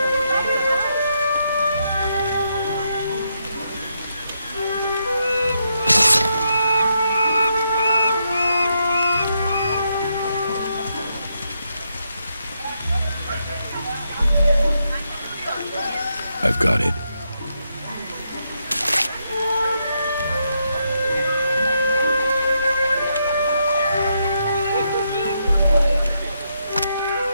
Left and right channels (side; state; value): both; inverted; correlation -0.80